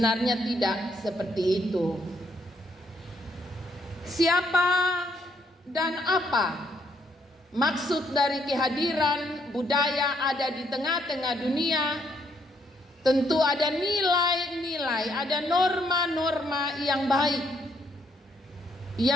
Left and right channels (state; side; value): normal; both; correlation 0.72